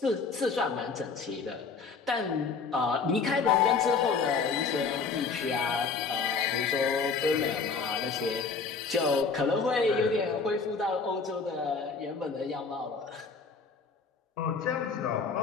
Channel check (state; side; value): quieter; right; 5.0 dB